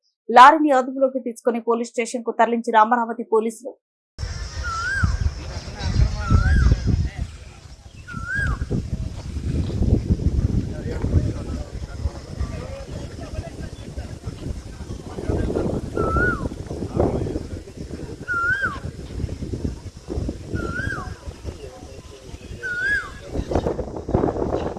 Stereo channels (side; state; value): both; identical; correlation 1.00